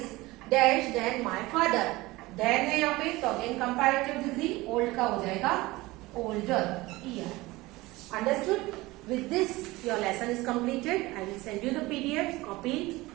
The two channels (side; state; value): left; quieter; 20.4 dB